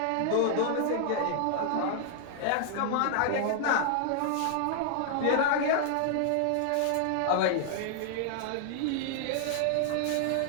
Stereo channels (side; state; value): both; different; correlation -0.01